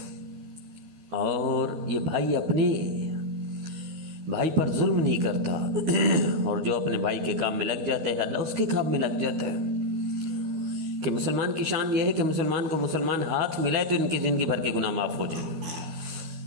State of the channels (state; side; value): late; left; 13 ms